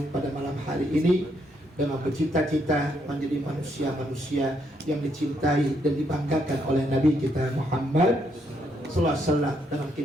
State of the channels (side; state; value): both; normal; correlation 0.75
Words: pada malam hari ini dengan bercita-cita menjadi manusia-manusia yang dicintai dan dibanggakan oleh Nabi kita Muhammad sallallahu alaihi wasallam, dengan